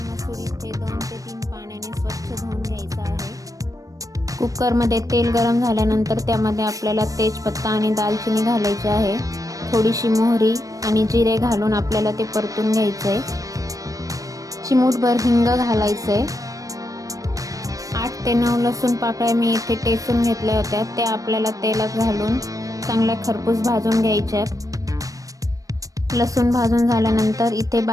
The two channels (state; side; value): late; left; 0.16 ms